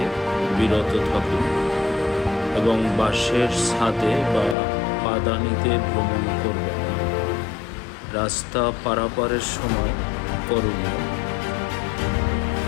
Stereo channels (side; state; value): right; drops out; at 4.5 s